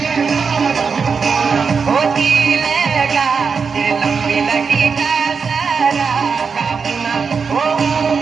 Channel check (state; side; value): quieter; left; 5.5 dB